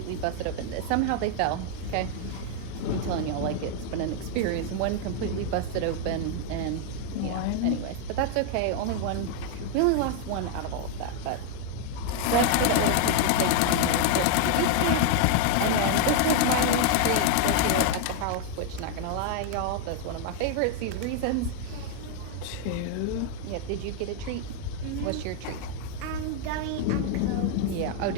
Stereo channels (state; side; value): different; both; correlation 0.00